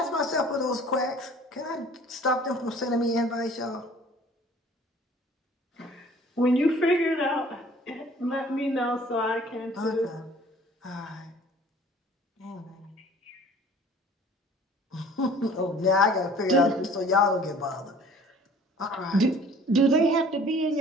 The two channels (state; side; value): normal; both; correlation 0.51